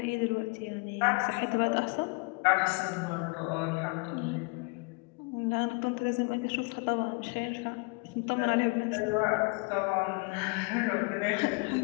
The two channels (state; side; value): quieter; right; 29.5 dB